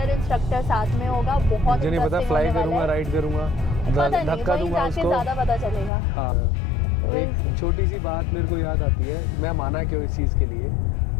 इंस्ट्रक्टर साथ में होगा, बहुत मुझे नहीं पता, फ्लाई करूंगा, राइड करूंगा, धक्का दूंगा उसको, ज़्यादा पता चलेगा। हाँ। एक छोटी सी बात मेरे को याद आती है, मैं माना क्यों इस चीज़ के लिए,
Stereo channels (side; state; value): right; drops out; at 5.9 s